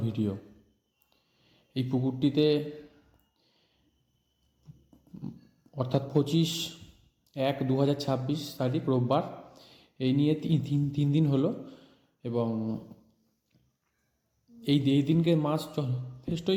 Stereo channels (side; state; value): both; identical; correlation 1.00